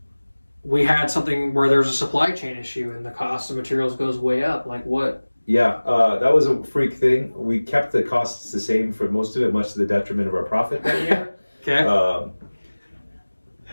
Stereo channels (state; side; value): inverted; both; correlation -1.00